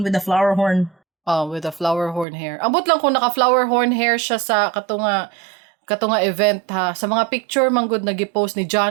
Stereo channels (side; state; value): left; drops out; at 2.2 s